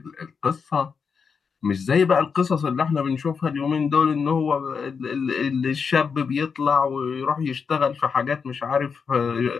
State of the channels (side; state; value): right; quieter; 5.8 dB